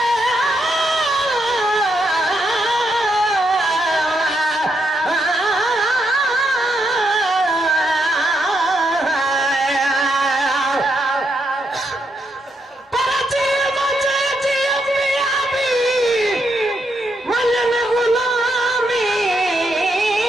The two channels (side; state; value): both; normal; correlation 0.79